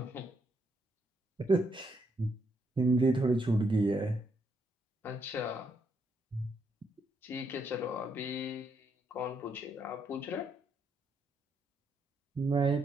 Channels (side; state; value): both; normal; correlation 0.77